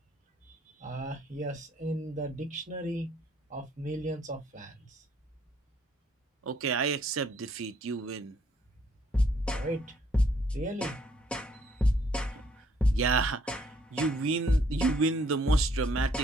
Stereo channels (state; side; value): normal; both; correlation 0.66